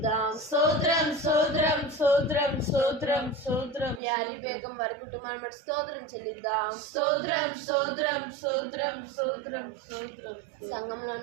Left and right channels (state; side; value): drops out; left; at 4.0 s